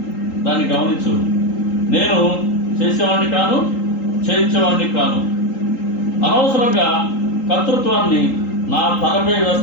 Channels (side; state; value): right; late; 3.8 ms